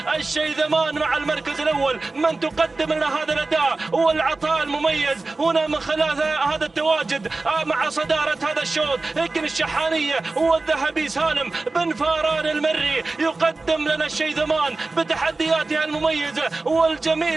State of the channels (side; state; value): left; quieter; 3.4 dB